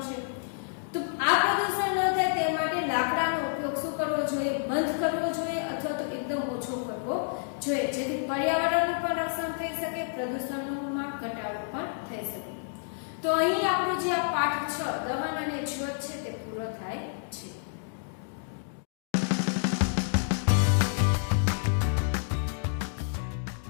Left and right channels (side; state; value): right; silent; digital silence